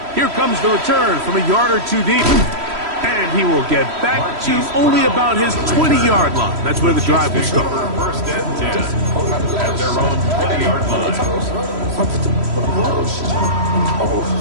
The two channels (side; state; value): left; late; 3.1 ms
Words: Here comes the return from a yard or two deep. And he will get back to only about his 20-yard line. That's where the drive will start. First and 10 at their own 20-yard line.